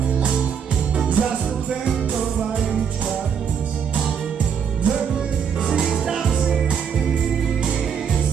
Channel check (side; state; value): left; quieter; 7.4 dB